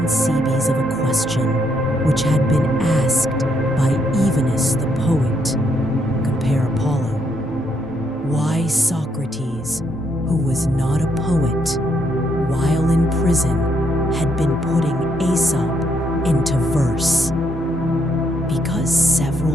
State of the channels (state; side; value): normal; both; correlation 0.74